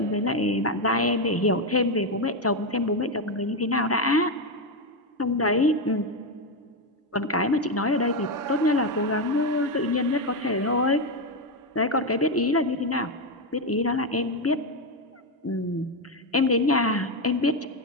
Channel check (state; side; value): normal; both; correlation 0.08